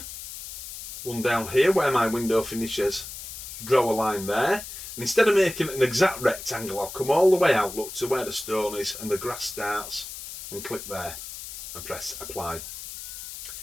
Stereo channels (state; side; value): noise; left; hiss, 10 dB below the sound